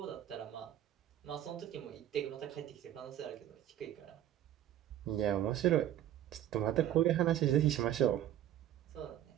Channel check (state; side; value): quieter; left; 11.7 dB